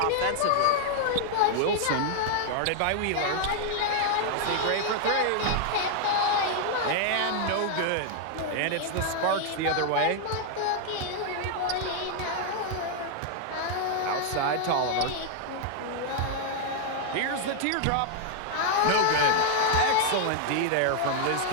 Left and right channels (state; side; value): different; both; correlation 0.00